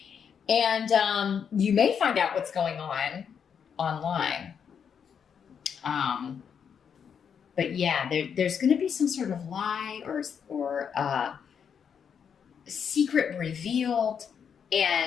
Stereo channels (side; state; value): right; quieter; 7.3 dB